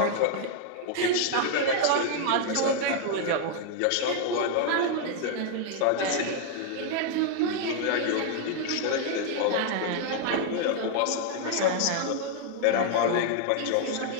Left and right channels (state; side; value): different; both; correlation 0.00